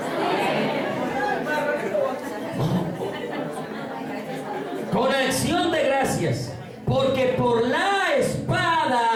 Con acción de gracias, porque por la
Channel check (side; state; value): both; identical; correlation 1.00